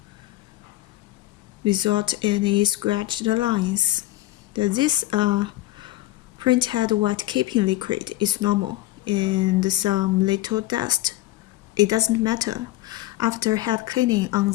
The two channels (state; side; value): quieter; right; 15.9 dB